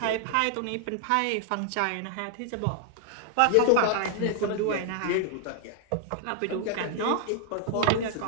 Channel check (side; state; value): both; different; correlation 0.00